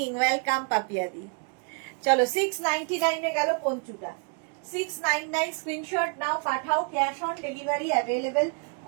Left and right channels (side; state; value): left; quieter; 37.9 dB